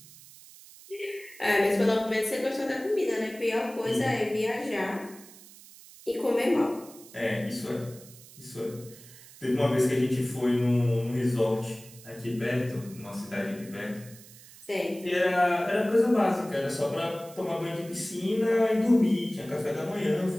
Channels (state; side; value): noise; right; hiss, 20 dB below the sound